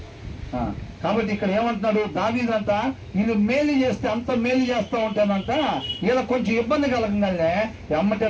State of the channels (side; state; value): both; identical; correlation 1.00